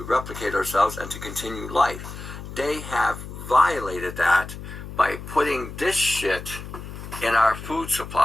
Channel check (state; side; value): noise; left; hum, 11 dB below the sound